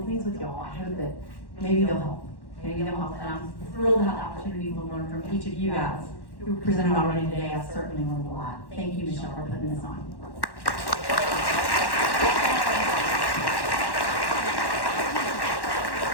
things with y'all. I hope that maybe they'll help. And I'm thrilled to have the opportunity to learn from each of you guys who presented already today. I've certainly learned a lot. Thank you, Michelle, for putting this on.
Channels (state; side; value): late; right; 1.1 ms